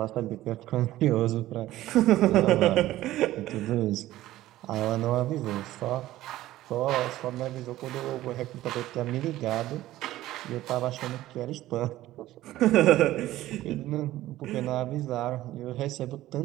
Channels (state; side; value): quieter; left; 15.3 dB